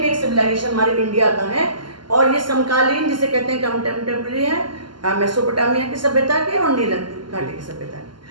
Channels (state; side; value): late; left; 0.71 ms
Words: एक सिविलाइजेशन हमारे इंडिया का है, और ये समकालीन जिसे कहते हैं कंटेम्प्रेरी है मेसोपोटामिया की सभ्यता के और नील घाटी की सभ्यता की।